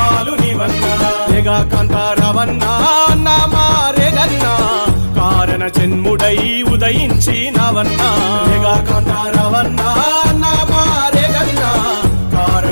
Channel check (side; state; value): both; inverted; correlation -1.00